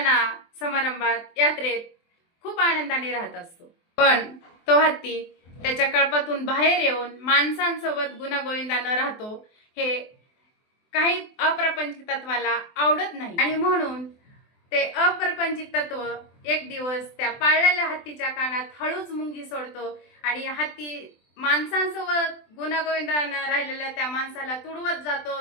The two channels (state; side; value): late; right; 24 ms